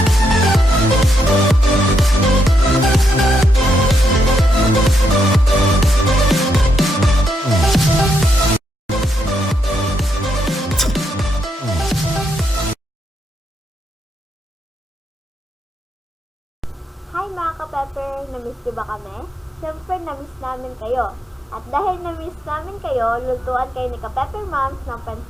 Hi mga kapepper! Namiss niyo ba kami? Siyempre, namiss namin kayo. At dahil namiss namin kayo, lutuan kayo ni Kapepper Momz ng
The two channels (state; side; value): normal; both; correlation 0.79